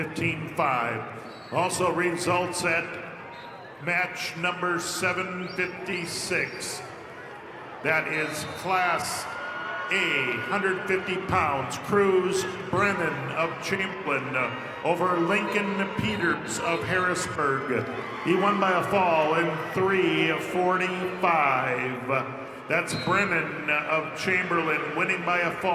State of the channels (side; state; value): both; identical; correlation 1.00